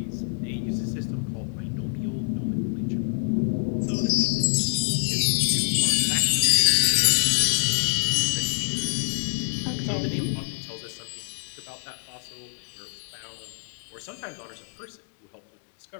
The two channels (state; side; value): silent; right; 61 dB below the other